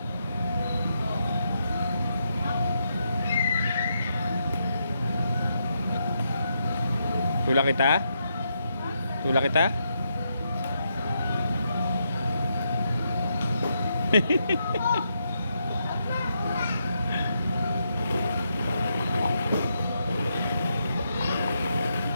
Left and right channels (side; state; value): both; inverted; correlation -0.81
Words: Tulak kita? Tulak kita?